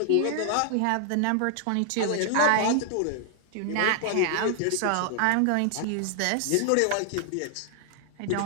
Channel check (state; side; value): different; both; correlation 0.00